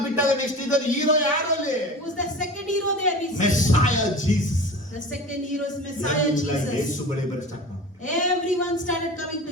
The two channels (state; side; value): normal; both; correlation 0.35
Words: ಬಿಟ್ಟಾಗ ನೆಕ್ಸ್ಟ್ ಇದ್ದ ಹೀರೋ ಯಾರು ಅಲ್ಲಿ? Who's the second hero there? Messiah Jesus. The second hero is Messiah Yesu Jesus. ಬಳಿ ಬರ ಸ್ಟಾರ್ಟ್ ಮಾಡಿದ್ರು. Everyone started coming